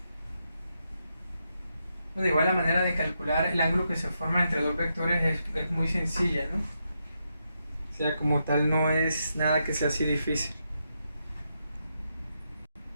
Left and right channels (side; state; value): both; inverted; correlation -0.83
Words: Bueno, igual la manera de calcular el ángulo que se forma entre dos vectores es muy sencilla, ¿no? O sea, como tal no es nada que sea así difícil.